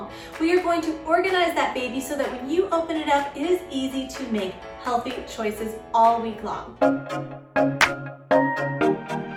We are going to organize that baby so that when you open it up, it is easy to make healthy choices all week long.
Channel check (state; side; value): identical; both; correlation 1.00